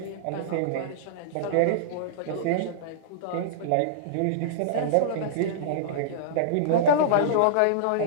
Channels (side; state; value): both; different; correlation -0.03